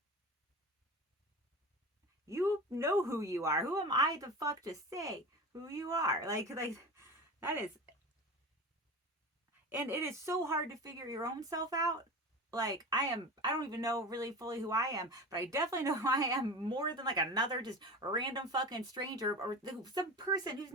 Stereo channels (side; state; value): both; normal; correlation 0.30